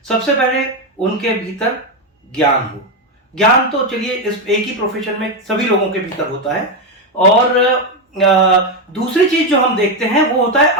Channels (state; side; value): normal; both; correlation 0.08